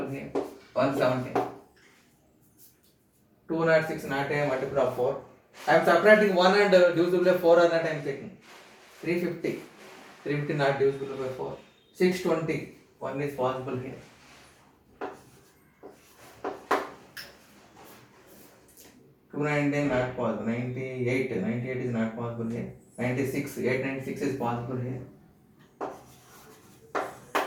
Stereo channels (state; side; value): identical; both; correlation 1.00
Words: here. 117. 206 not a multiple of 4. I am subtracting 1 and divisible by 4 are not I am taking. 350. 350 not divisible by 4. 620. 1 is possible here. 219 not possible. 98 is not possible here. 96. 896 is possible here.